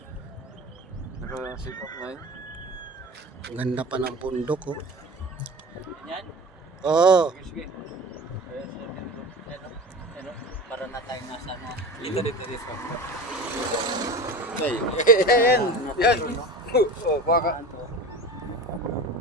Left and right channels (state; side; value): normal; both; correlation 0.33